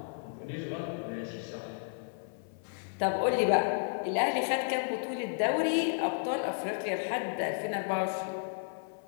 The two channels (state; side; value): silent; right; 56 dB below the other